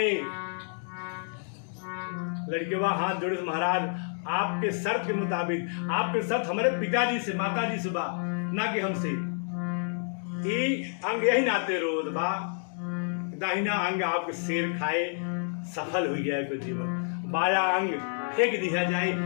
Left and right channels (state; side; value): silent; right; 58 dB below the other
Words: लड़के वहां हाथ जोड़े, महाराज आपके शर्त के मुताबिक, आपके शर्त हमारे पिताजी से माताजी से बा, ना कि हमसे, अंग यही नाते रोध बा, दाहिना अंग आपके शेर खाए, सफल हो गया है जीवन, बाया अंग फेंक दिया जाए,